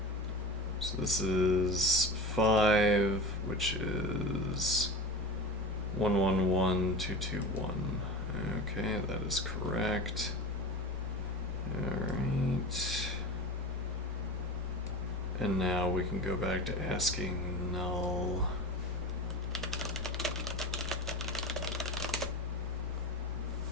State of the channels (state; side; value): normal; both; correlation 0.31